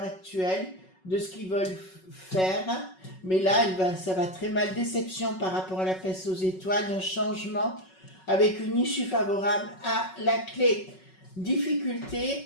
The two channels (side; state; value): right; late; 5.4 ms